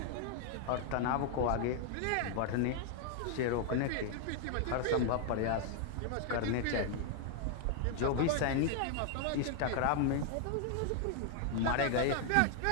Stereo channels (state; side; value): different; both; correlation 0.00